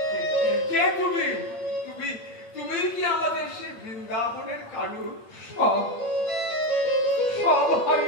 কে তুমি? তুমি তুমি কি আমাদের সে বৃন্দাবনের কানু? সব সব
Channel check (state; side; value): late; right; 8.6 ms